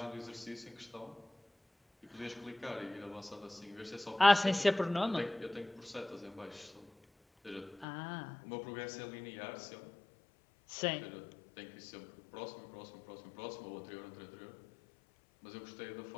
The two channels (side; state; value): right; drops out; at 7.9 s